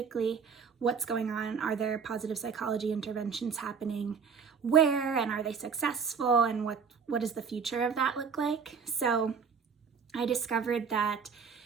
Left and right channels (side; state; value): left; quieter; 6.0 dB